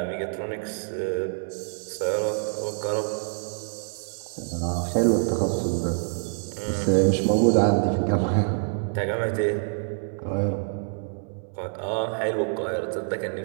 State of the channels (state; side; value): silent; left; 61 dB below the other